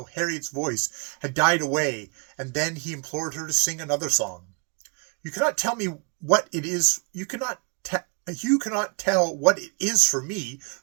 Harriet's voice had died away, and then he implored her to sing another song. "You cannot tell me what it is. You cannot tell what it is for me,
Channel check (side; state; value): left; quieter; 33.4 dB